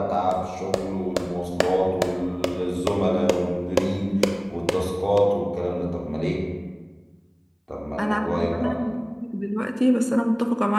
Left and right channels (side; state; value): both; identical; correlation 1.00